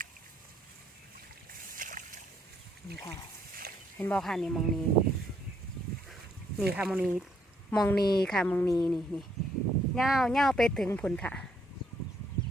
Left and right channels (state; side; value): normal; both; correlation 0.70